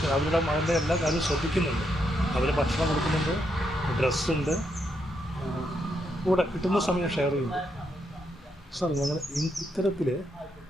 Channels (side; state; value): both; normal; correlation 0.79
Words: അവരുടെ മകൻ്റെ എല്ലാ കാര്യവും ശ്രദ്ധിക്കുന്നുണ്ട്. അവർ ഭക്ഷണം കൊടുക്കുന്നുണ്ട്, ഡ്രസ്സുണ്ട്, കൂടെ കിട്ടുന്ന സമയം ഷെയർ ചെയ്യുന്നു. സാർ, ഞങ്ങൾ ഇത്തരത്തിൽ